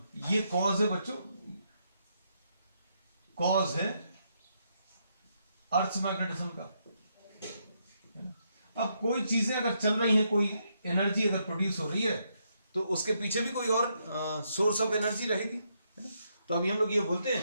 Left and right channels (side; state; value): both; inverted; correlation -0.77